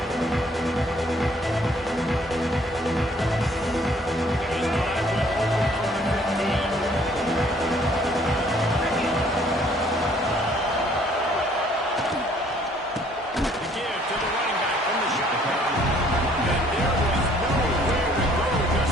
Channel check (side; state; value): both; normal; correlation 0.61